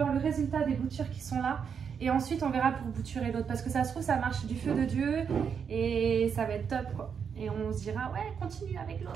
le résultat des boutures qui sont là. Et ensuite, on verra pour bouturer l'autre. Parce que ça se trouve, ça marche du feu de Dieu. Et ça va être top, quoi. Et on se dira, ouais, continue avec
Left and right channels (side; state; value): left; quieter; 6.9 dB